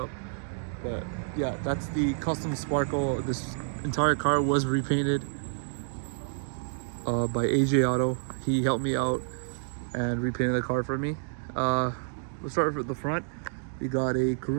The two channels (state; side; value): silent; left; digital silence